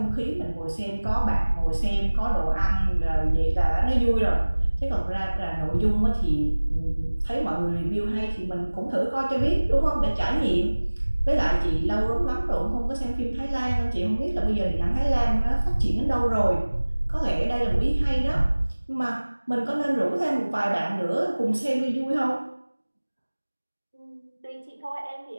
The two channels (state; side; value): inverted; both; correlation -1.00